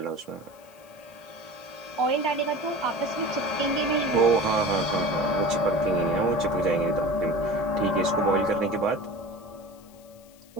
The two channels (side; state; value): left; noise; hiss, 27 dB below the sound